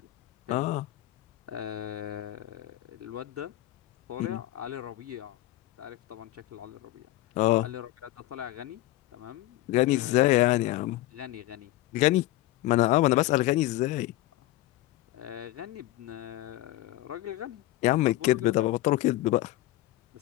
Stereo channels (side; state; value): right; quieter; 16.3 dB